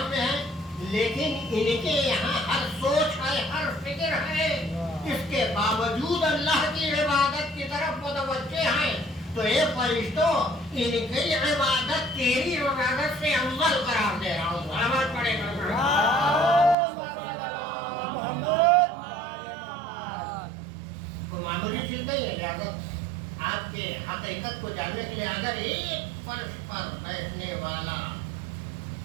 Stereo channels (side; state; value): left; drops out; at 16.8 s